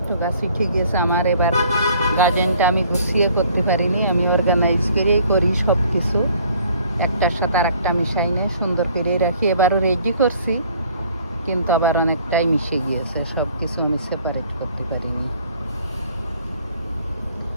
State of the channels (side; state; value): both; inverted; correlation -0.57